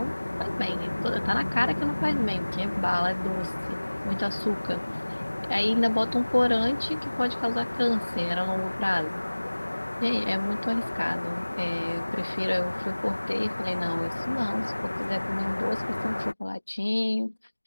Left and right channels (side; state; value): both; inverted; correlation -1.00